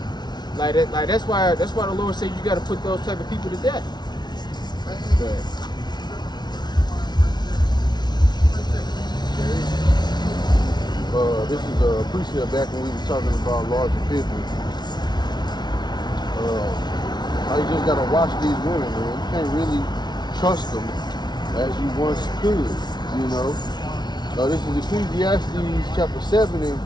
like that's why the Lord said you got to put those type of people to death. But, this is a precept back when we were talking about larger people. You just gotta watch these women, man. You can't really trust them as you once could, you know. This is Ecclesiastes chapter 7 and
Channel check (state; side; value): late; right; 0.20 ms